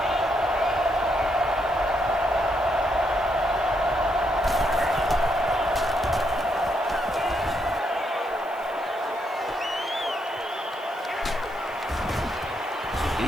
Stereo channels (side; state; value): right; noise; hiss, 26 dB below the sound